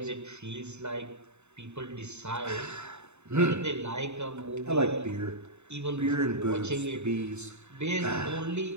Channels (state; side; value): late; left; 0.82 ms